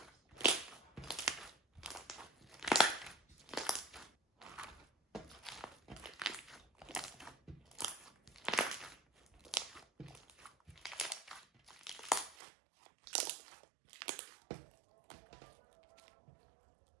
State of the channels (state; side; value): drops out; left; at 12.4 s